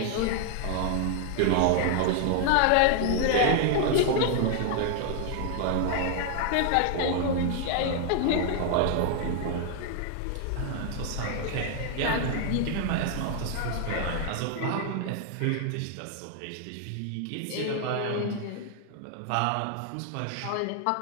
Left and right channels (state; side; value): different; both; correlation 0.00